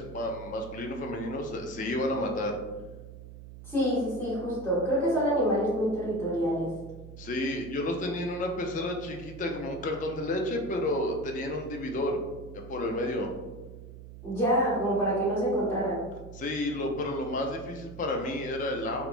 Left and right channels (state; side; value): noise; right; hum, 14 dB below the sound